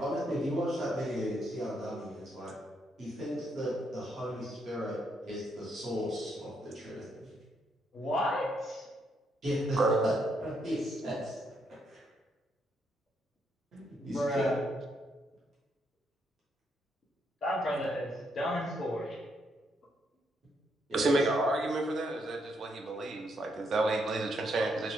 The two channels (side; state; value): both; normal; correlation 0.76